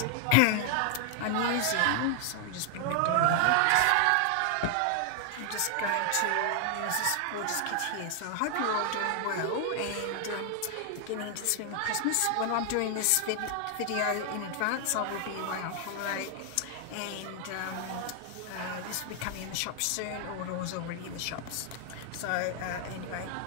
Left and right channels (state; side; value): different; both; correlation 0.00